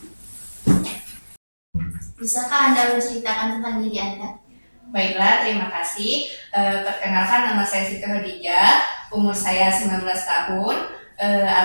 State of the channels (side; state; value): both; inverted; correlation -1.00